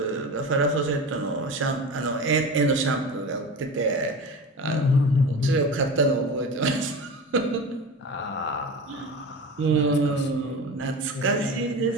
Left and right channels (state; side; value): normal; both; correlation 0.30